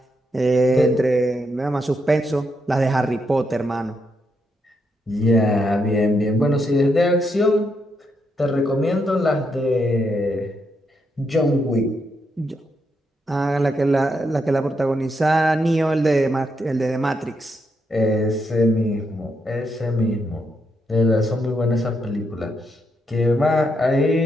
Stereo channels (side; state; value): both; normal; correlation 0.80